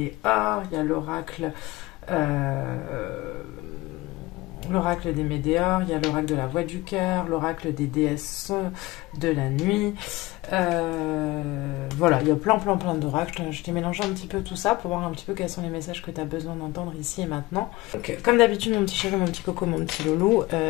il y a l'oracle des Médéors, il y a l'oracle de la voix du cœur, l'oracle des déesses de la nuit. Voilà, il y a plein d'oracles. Je t'ai mélangé un petit peu tout ça pour voir un petit peu quels sont les messages que tu as besoin d'entendre ici et maintenant. Donc, comme d'habitude, mon petit chéri, mon petit coco, mon petit loulou,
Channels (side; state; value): right; quieter; 20.5 dB